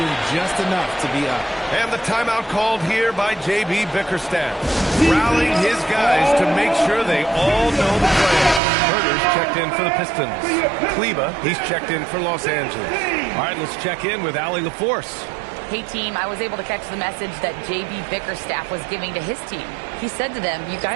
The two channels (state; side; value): drops out; left; at 8.6 s